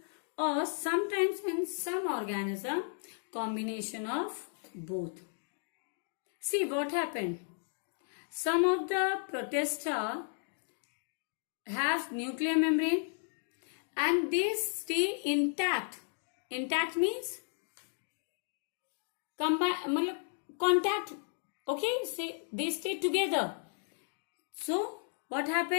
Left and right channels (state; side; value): silent; right; 55 dB below the other